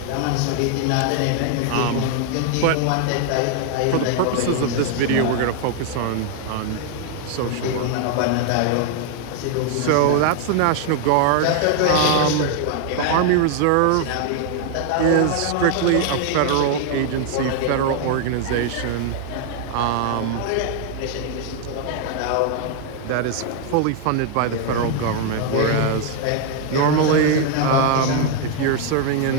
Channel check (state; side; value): different; both; correlation 0.00